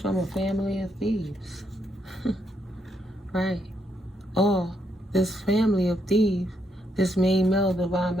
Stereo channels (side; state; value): both; normal; correlation 0.76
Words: from a family of thieves. Right. Or this family of thieves, this main male, divine